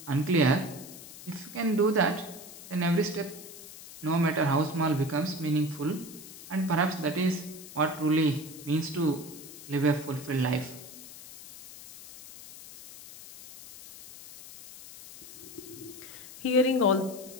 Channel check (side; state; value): left; noise; hiss, 15 dB below the sound